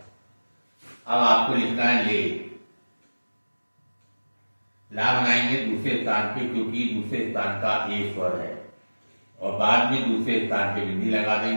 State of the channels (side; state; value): both; inverted; correlation -1.00